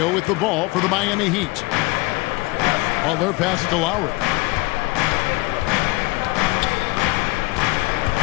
with the ball for the Miami Heat. Butler passes to Lowry.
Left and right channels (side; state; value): right; quieter; 23.5 dB